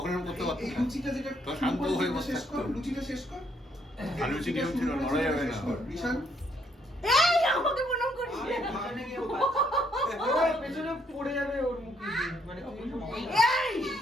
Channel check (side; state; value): both; normal; correlation 0.70